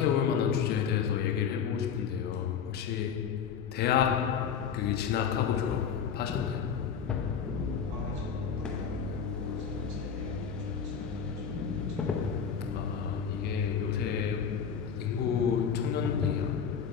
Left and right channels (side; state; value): right; quieter; 7.1 dB